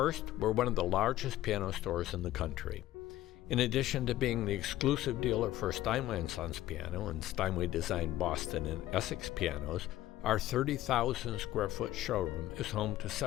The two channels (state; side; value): quieter; right; 14.6 dB